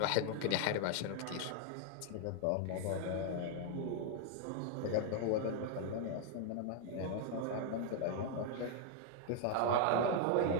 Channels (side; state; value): both; different; correlation 0.00